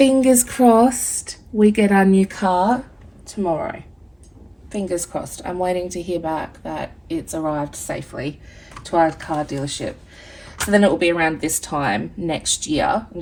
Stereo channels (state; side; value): identical; both; correlation 1.00